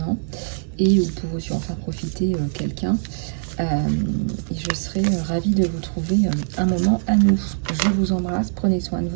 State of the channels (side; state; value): left; silent; 62 dB below the other